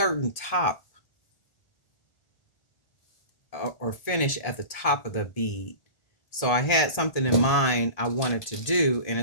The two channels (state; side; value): late; right; 1.8 ms